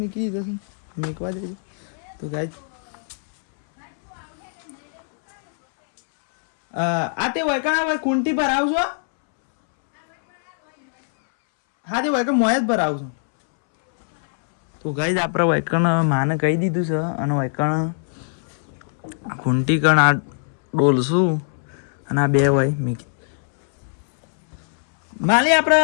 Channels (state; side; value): silent; right; 64 dB below the other